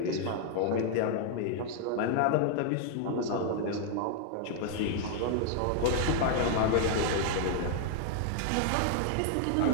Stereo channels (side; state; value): both; different; correlation 0.00